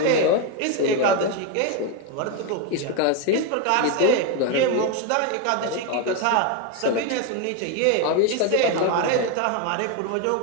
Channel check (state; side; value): different; both; correlation 0.02